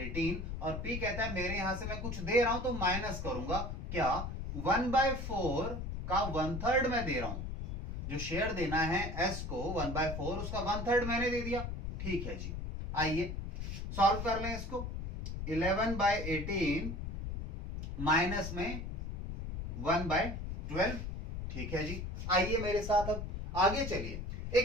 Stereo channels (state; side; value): noise; left; rumble, 5 dB below the sound